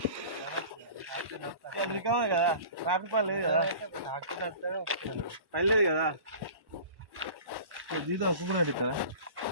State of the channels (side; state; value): left; late; 1.1 ms